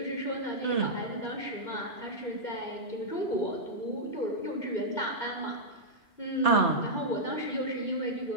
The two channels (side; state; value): right; late; 2.9 ms